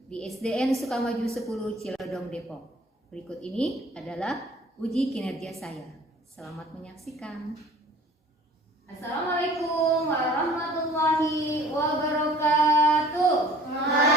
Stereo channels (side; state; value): both; normal; correlation 0.51